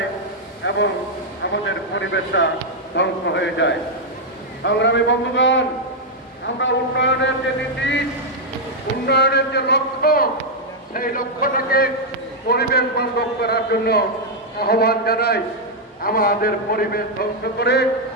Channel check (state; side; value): normal; both; correlation -0.02